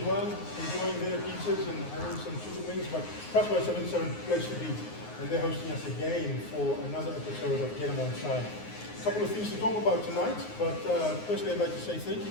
well, enjoying their pizzas and having some chicken wings. But Cross by 77 place to be. And they're hosting us again for another episode of Get 'em On Side. A couple of things to talk about tonight, but firstly I'd like to say thank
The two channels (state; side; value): late; right; 9.5 ms